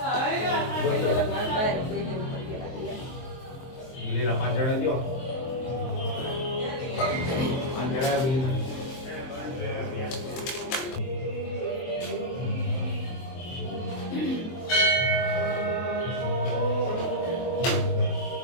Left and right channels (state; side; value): late; right; 23 ms